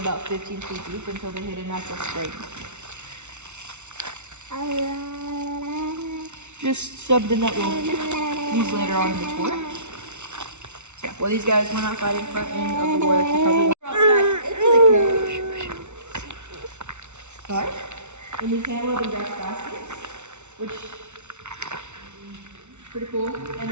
15 feet deep until they hit a natural spring. Just shoved in that well. Used later on in the tour. Yeah, well, these guys went outside in front end of the war. They probably went outside into the cave. Sorry? And these handled and grass baskets, which pretty cool. And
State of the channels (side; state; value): left; late; 0.83 ms